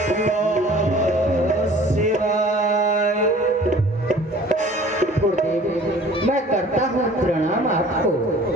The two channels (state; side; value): normal; both; correlation 0.48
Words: शिवाय। गुरुदेव, मैं करता हूँ प्रणाम आपको।